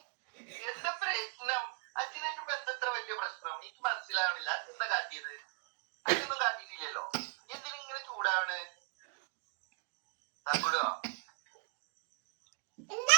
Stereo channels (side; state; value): left; quieter; 37.5 dB